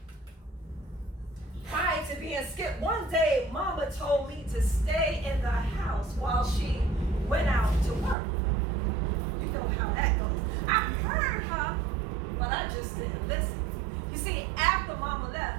prior to being skipped, one day Mama told me to stay in the house while she went out to work. You know how that goes. I heard her, but I just didn't listen. You see, after Mama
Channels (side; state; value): left; drops out; at 8.2 s